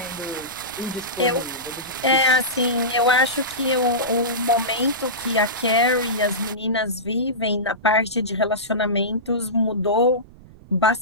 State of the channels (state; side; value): noise; right; rumble, 21 dB below the sound